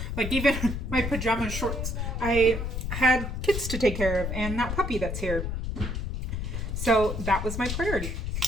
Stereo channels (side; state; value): left; noise; rumble, 3 dB below the sound